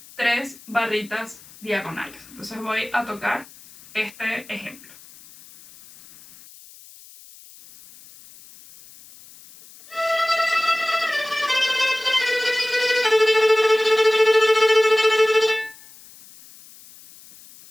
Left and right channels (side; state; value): left; noise; hiss, 22 dB below the sound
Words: 3 barritas diagonales. Entonces voy a tocar este ejemplo.